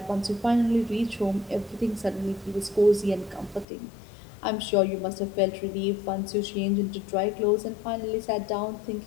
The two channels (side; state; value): right; drops out; at 3.7 s